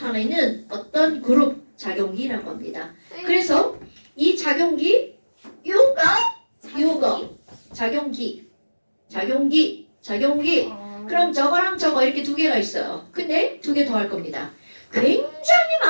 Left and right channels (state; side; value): inverted; both; correlation -1.00